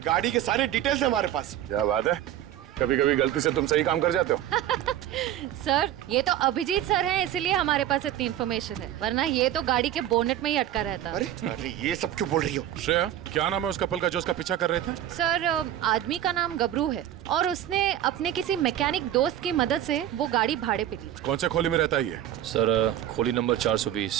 गाड़ी के सारे डिटेल्स है हमारे पास। क्या बात है, कभी कभी गलती से तुम सही काम कर जाते हो। सर ये तो अभिजीत सर हैं, इसीलिए हमारे पास इतनी इन्फॉर्मेशन है, वरना ये तो गाड़ी के बोनेट में ही अटका रहता। अरे अरे ये सब क्यों बोल रही हो? श्रेया, क्या नाम है उस कपल का जो उसका पीछा कर रहे थे? सर आदमी का नाम गबरू है और उसने अपने किसी मैकेनिक दोस्त की मदद से वो गाड़ी भाड़े पे ली। कौन से खोली में रहता है ये? सर खोली नंबर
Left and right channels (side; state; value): left; quieter; 11.9 dB